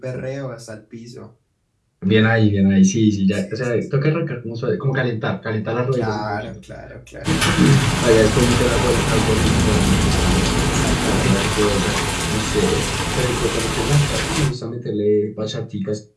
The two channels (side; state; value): both; identical; correlation 1.00